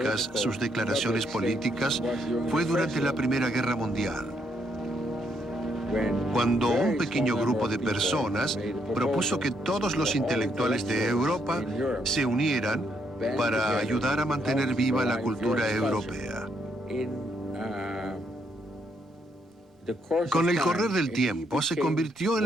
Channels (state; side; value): normal; both; correlation 0.74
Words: sus declaraciones políticas fue durante la Primera Guerra Mundial, cuando un pequeño grupo de personas propuso que todos los intelectuales de Europa se unieran para ayudar a mantener viva la cultura europea. Con el correr del tiempo se convirtió en